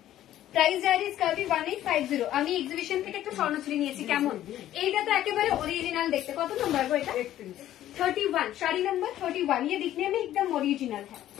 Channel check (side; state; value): right; quieter; 12.8 dB